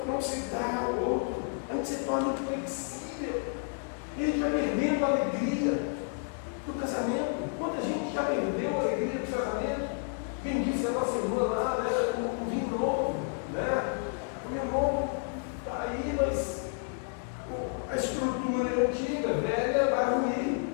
não se dá ao outro, a gente se torna inflexível, e a gente vai perdendo a alegria do casamento. Quanta gente já perdeu a alegria do casamento? Quem disse a nossa irmã lá, né, o vinho novo, né? O vinho novo está aí, mas a estrutura antiga, velha, vai ruir,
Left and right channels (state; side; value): silent; right; 57 dB below the other